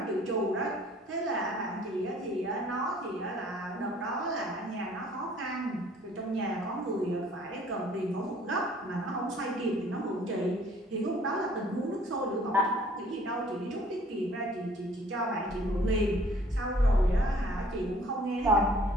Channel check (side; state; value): both; normal; correlation 0.55